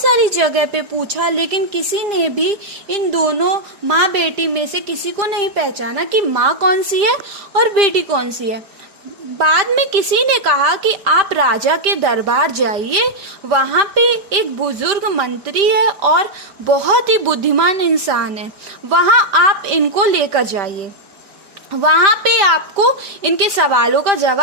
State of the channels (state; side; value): late; left; 5.1 ms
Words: जगह पे पूछा, लेकिन किसी ने भी इन दोनों माँ बेटी में से किसी को नहीं पहचाना कि माँ कौन सी है और बेटी कौन सी है। बाद में किसी ने कहा कि आप राजा के दरबार जाइए, वहाँ पे एक बुजुर्ग मंत्री है और बहुत ही बुद्धिमान इंसान है, वहाँ आप इनको लेकर जाइए, वहाँ पे आपको इनके सवालों का